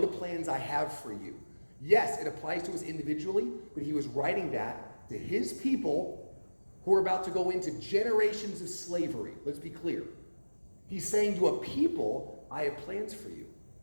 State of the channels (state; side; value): inverted; both; correlation -1.00